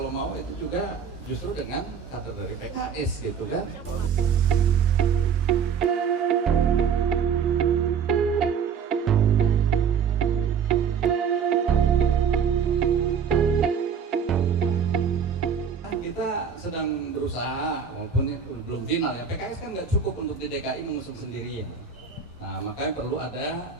mau itu juga justru dengan kader dari PKS gitu kan. Kita sedang berusaha, walaupun itu belum final ya, PKS kan nggak cukup untuk di DKI mengusung sendirian. Nah, makanya perlu ada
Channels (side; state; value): left; quieter; 6.9 dB